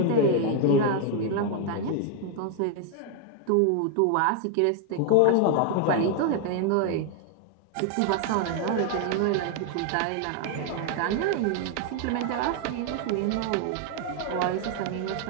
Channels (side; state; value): both; different; correlation 0.00